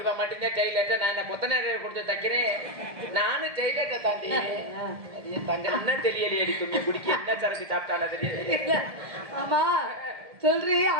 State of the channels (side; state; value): left; late; 1.7 ms